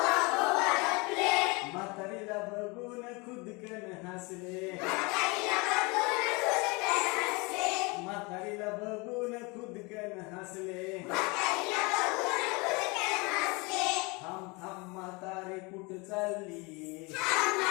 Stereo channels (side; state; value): right; quieter; 27.6 dB